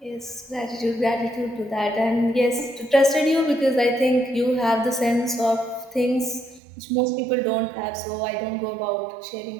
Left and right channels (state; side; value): drops out; left; at 6.6 s